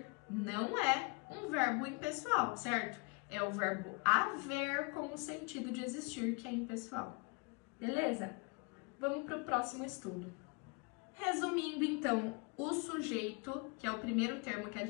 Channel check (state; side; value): quieter; right; 31.2 dB